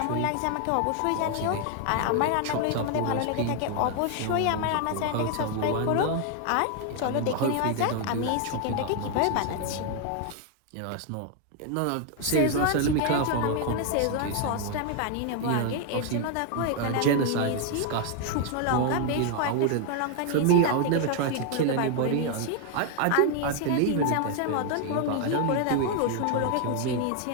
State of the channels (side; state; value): both; different; correlation 0.00